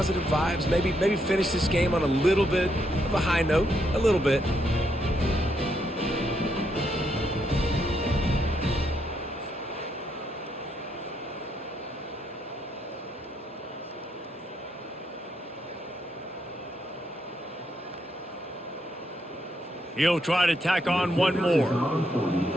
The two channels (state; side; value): normal; both; correlation 0.77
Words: vibes. Maybe finish this game on a little bit of a high note, a little bit. He'll try to tack on one more.